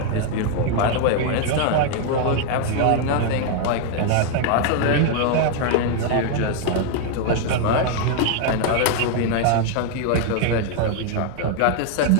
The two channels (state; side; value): different; both; correlation 0.00